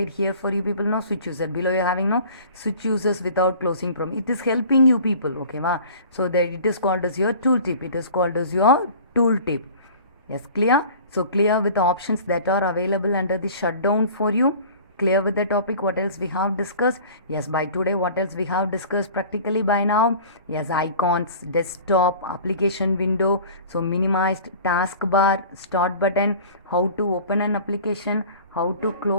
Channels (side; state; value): both; inverted; correlation -0.44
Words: here for you people. No switch user. Below you're having no switch users without closing prom. It is helping you people. Okay, ma. So that it is called as your tooltip. It is called as your tooltip. Yes, clear? So clear with the options that are available under the shutdown for you. Clear with the topic. What else we have discussed? Yes, by today, what else we have discussed practically by now? Yes, icons, desktop, application window. So minimized taskbar, start button, how to open an application, how to